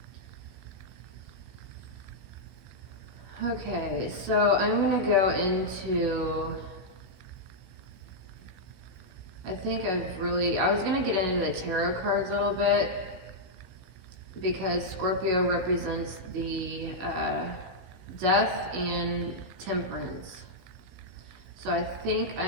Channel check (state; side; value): late; left; 16 ms